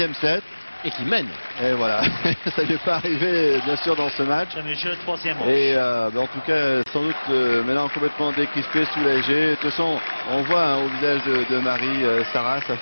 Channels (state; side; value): inverted; both; correlation -1.00